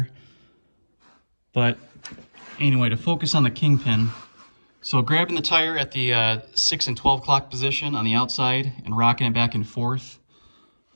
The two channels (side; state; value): both; inverted; correlation -1.00